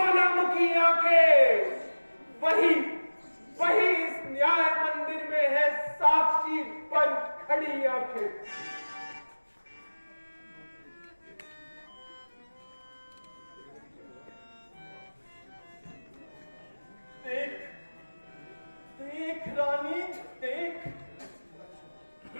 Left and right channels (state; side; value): inverted; both; correlation -1.00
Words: आंखें वही वही इस न्याय मंदिर में है साक्षी बन खड़ी आंखें। देख देख रानी देख,